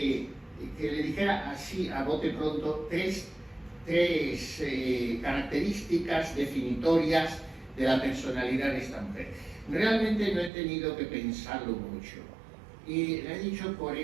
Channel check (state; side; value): drops out; left; at 10.5 s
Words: le dijera así a bote pronto tres características definitorias de la personalidad de esta mujer. Realmente no he tenido que pensarlo mucho y le he dicho por